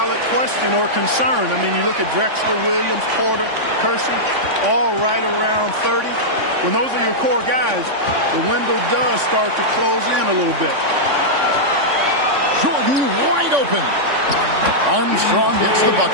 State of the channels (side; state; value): left; late; 3.5 ms